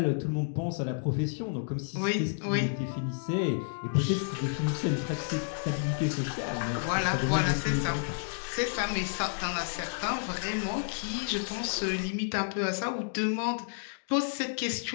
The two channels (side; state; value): right; silent; digital silence